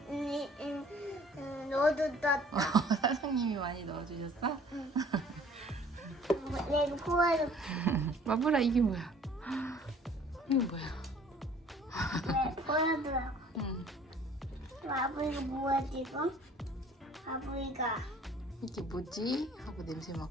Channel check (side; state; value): both; normal; correlation 0.53